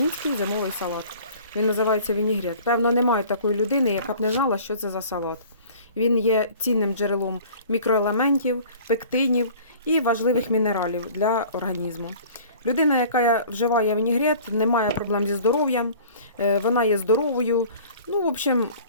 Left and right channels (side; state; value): both; inverted; correlation -0.47